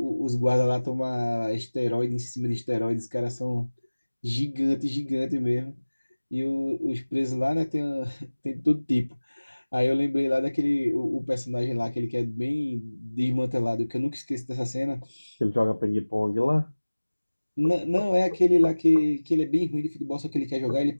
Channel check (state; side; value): inverted; both; correlation -1.00